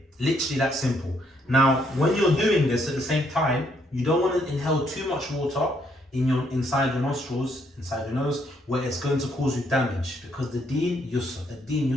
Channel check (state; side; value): normal; both; correlation 0.71